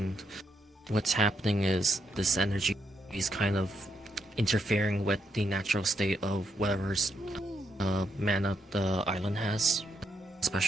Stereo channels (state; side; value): normal; both; correlation 0.79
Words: what's happening is this energy is kind of interfering with the natural state of whatever's mana the island has,